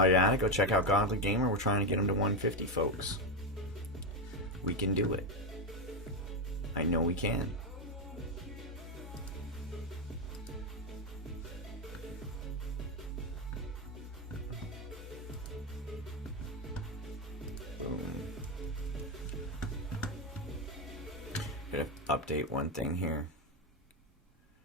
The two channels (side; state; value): both; normal; correlation 0.08